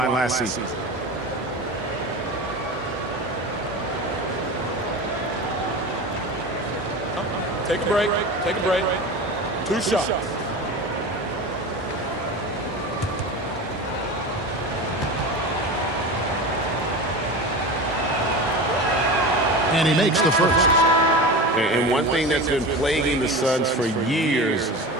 last season. Take a break. Take a break. 2 shots. And he makes the first. And one thing that's been plaguing the Suns for years,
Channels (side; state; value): both; normal; correlation 0.29